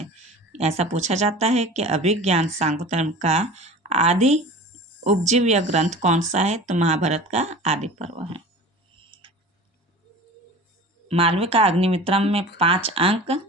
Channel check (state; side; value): normal; both; correlation 0.38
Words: ऐसा पूछा जाता है कि अभिज्ञान शाकुंतलम का आदि उपजीव्य ग्रंथ कौन सा है, तो महाभारत का आदि पर्व है। मालविका अग्निमित्रम में 5 अंक